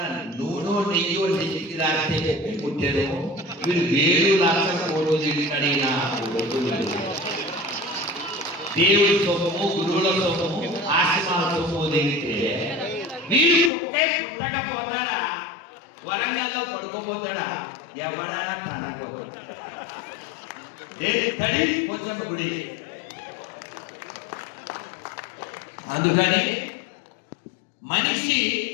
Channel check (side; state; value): right; drops out; at 13.7 s